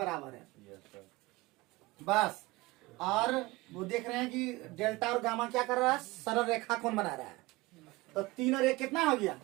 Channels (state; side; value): quieter; left; 21.3 dB